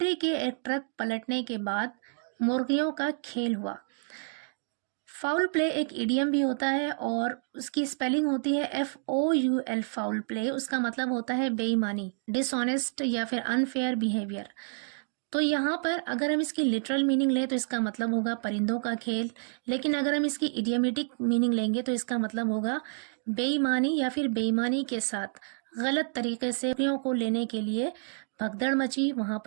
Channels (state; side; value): silent; left; 58 dB below the other